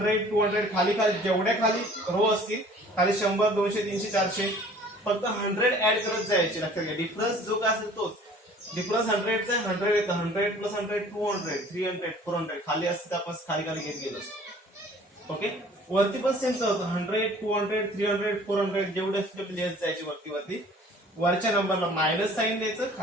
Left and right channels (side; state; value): both; normal; correlation 0.50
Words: 200 खाली खाली जेवढ्या खाली रो असतील खाली 100 200 300 400 फक्त 100 ऍड करत जायचे. लक्षात घ्या, डिफरन्स जो काय असेल तोच. डिफरन्स 100 चा 100 येतं, 100 प्लस 100 200 300 400 खाली असते आपण खाली खाली घेत गेलो. ओके, वरती पण सेम होतं 100 200 300 400 जेवढे असते तेवढे लिहत जायचे वरती वरती. वरच्या नंबरला मायनस साइन द्यायचं,